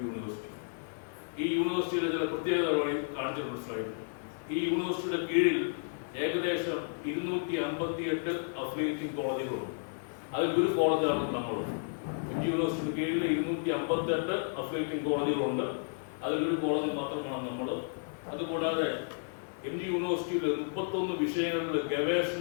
യൂണിവേഴ്സിറ്റി. ഈ യൂണിവേഴ്സിറ്റിയുടെ ചില പ്രത്യേകതകൾ കാണിച്ചിട്ടുണ്ട് സ്ലൈഡ്. ഈ യൂണിവേഴ്സിറ്റിയുടെ കീഴിൽ ഏകദേശം 258 അഫിലിയേറ്റിംഗ് കോളേജുകളുണ്ട്. അതിൽ ഒരു കോളേജാണ് നമ്മൾ. MG യൂണിവേഴ്സിറ്റിയുടെ കീഴിൽ 258 അഫിലിയേറ്റിംഗ് കോളേജുകളുണ്ട്. അതിലൊരു കോളേജ് മാത്രമാണ് നമ്മൾ. അതുകൂടാതെ MG യൂണിവേഴ്സിറ്റിയിൽ 31 വിഷയങ്ങളിൽ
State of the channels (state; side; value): silent; right; digital silence